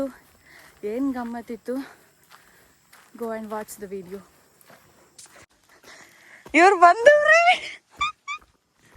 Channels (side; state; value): both; identical; correlation 1.00